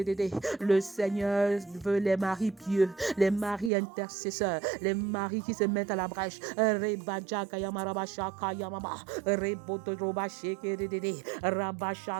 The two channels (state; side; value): drops out; left; at 3.7 s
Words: Le Seigneur veut les maris pieux, les maris intercesseurs, les maris qui se mettent à la brèche. Reba Jaga Yamaraba Shaka Yamama, Rebo Todroba Shegedede, Rabba